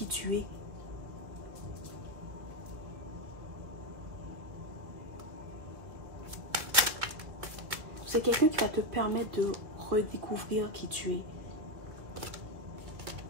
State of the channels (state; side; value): late; left; 2.2 ms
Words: tu es. C'est quelqu'un qui va te permettre de redécouvrir qui tu es.